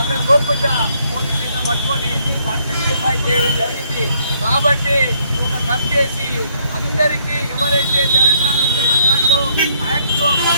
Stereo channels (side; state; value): both; inverted; correlation -0.68